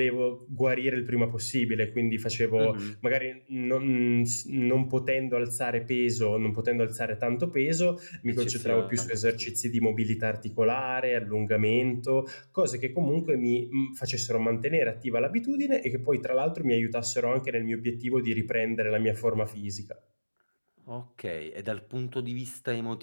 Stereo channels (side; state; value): both; inverted; correlation -1.00